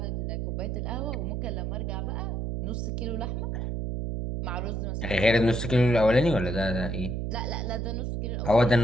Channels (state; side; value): noise; right; hum, 2 dB below the sound